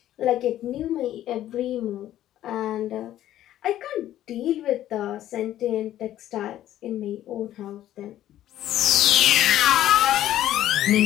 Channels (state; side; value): quieter; right; 12.8 dB